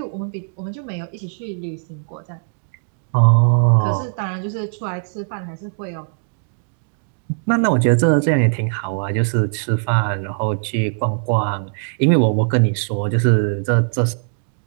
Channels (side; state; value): left; silent; 66 dB below the other